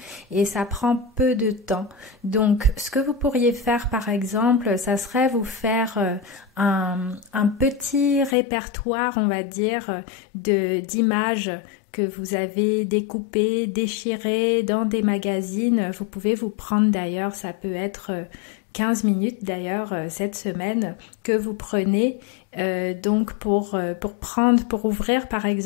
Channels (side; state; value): right; drops out; at 8.3 s